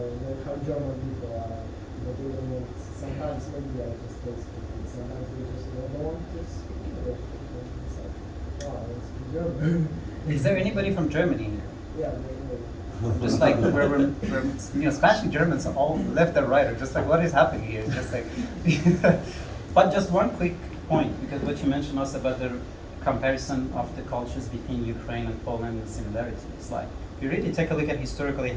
how German people are, but they don't want. Sometimes maybe they are just tasting. Sometimes they just don't want to speak English. It's like, oh, I want to speak German. Is there anybody from Germany here? Yeah, Just like we're Spanish and Germans all left and right, or just like what is happening here? Just like, but just one quick point, because what you mentioned also about the comparison of the cultures between Ukraine and Poland and the similarities. Like, if you really take a look at historically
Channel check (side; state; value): both; identical; correlation 1.00